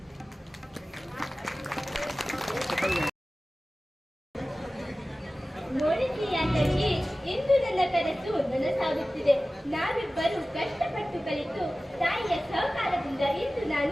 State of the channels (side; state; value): both; normal; correlation 0.96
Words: ನೋಡಿದ್ದೀಯ ತಂಗಿ, ಇಂದು ನನ್ನ ಕನಸು ನನಸಾಗುತ್ತಿದೆ. ನಾವಿಬ್ಬರು ಕಷ್ಟಪಟ್ಟು ಕಲಿತು ತಾಯಿಯ ಸಹಕಾರದಿಂದ ಇಂದು